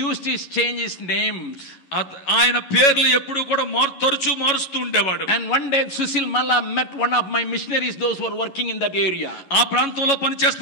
used to change his names. ఆయన పేర్లు ఎప్పుడు కూడా తరచూ మారుస్తూ ఉండేవాడు. And one day Sushil Malla met one of my missionaries, those who were working in that area. ఆ ప్రాంతంలో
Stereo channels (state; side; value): late; right; 11 ms